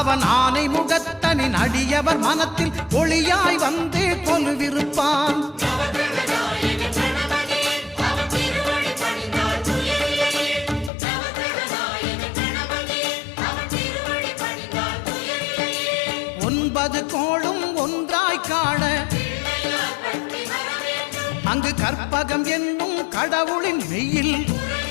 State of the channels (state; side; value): drops out; right; at 10.9 s